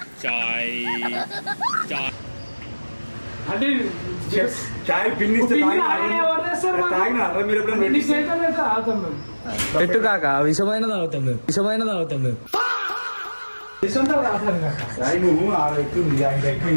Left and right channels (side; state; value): both; inverted; correlation -1.00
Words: అంటే చాయ్ పిన్నిస్తే పిన్ని అలానే ఎవరు చేస్తారు మరి? తాగినారా మీరు ఎప్పుడైనా? ఎన్ని సేకలు అయితే ఆగుతాం మేము. పెట్టు కాక విషమైన తాగుతాం మేము తీసుకుంటావు రాసాను కాక. చాయ్ నువ్వు ఆడ ఎక్కుంది, ఆయన